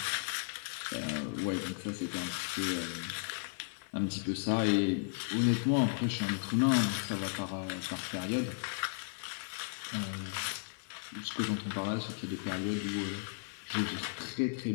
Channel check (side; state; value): right; silent; digital silence